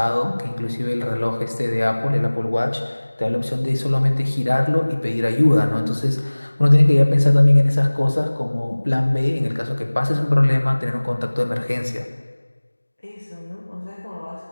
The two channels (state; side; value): inverted; both; correlation -1.00